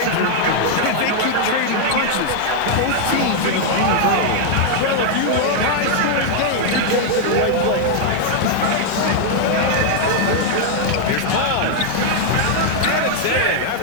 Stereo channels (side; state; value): both; different; correlation 0.00